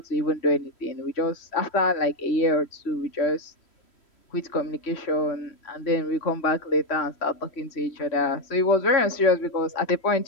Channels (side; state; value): right; late; 3.1 ms